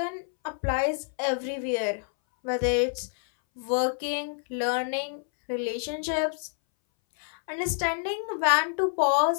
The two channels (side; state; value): right; silent; 60 dB below the other